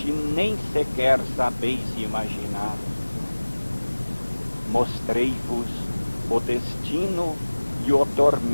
nem sequer sabeis imaginar. Mostrei-vos o destino e o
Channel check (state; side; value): inverted; both; correlation -1.00